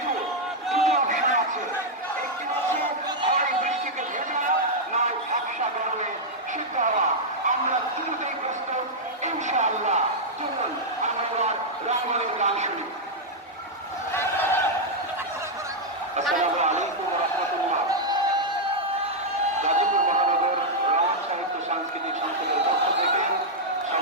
দুটো অপশন আছে। একটি হচ্ছে হয় বৃষ্টিকে ভেজা, নয় ঝাপসা গরমে সিদ্ধ হওয়া। আমরা দুটোই প্রস্তুত ইনশাআল্লাহ। চলুন আমরা এবার রাঙ্গলের গান শুনি। আসসালামু আলাইকুম ওয়া রাহমাতুল্লাহ। গাজীপুর মহানগর রমণ সাহিত্য সাংস্কৃতিক সংসদের পক্ষ থেকে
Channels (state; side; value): normal; both; correlation -0.04